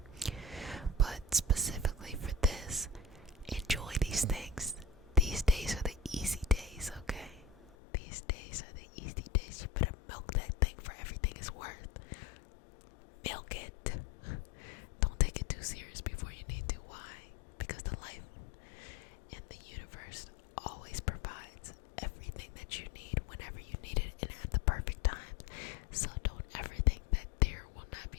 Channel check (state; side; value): drops out; right; at 7.7 s